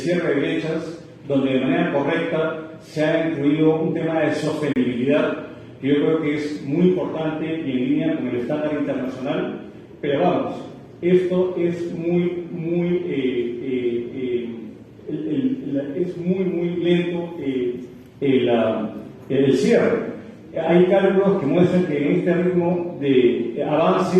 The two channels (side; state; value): both; identical; correlation 1.00